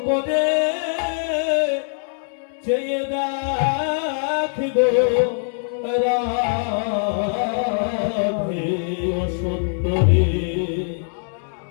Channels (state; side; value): silent; right; digital silence